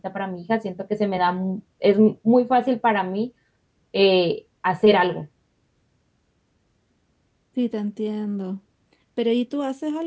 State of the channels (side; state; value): both; identical; correlation 1.00